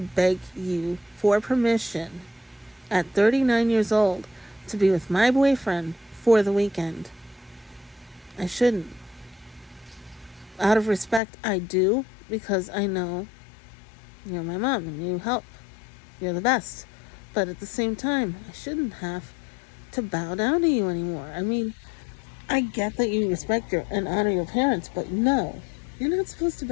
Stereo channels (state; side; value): drops out; right; at 11.2 s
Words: you for permission at 39 years old to be with my boyfriend for the weekend. I shouldn't. Out of respect, I do. because I know you're my mom and you help. You're the best. But at the same time, I shouldn't have to bow down to you anymore. I mean, I get that you respect and honor your parents, but no, you're not supposed to